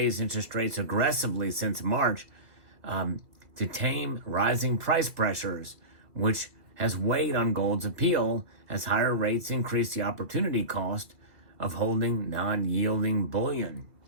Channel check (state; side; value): late; left; 2.5 ms